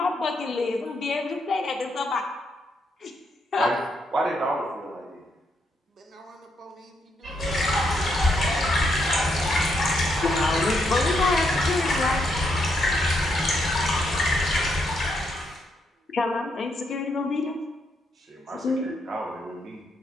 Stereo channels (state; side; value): normal; both; correlation 0.77